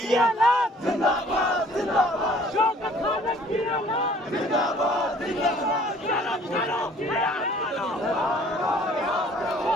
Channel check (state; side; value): normal; both; correlation 0.55